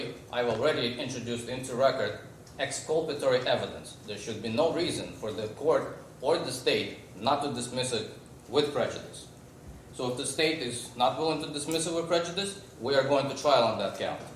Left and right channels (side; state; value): both; identical; correlation 1.00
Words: I've already introduced into record exculpatory evidence. There should be no reason for the court or the state not to dismiss it with prejudice. So if the state is not willing to dismiss it with prejudice, we are going to trial on that count.